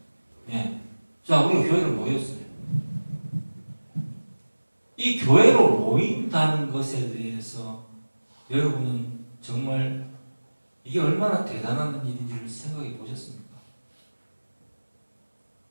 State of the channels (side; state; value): both; inverted; correlation -1.00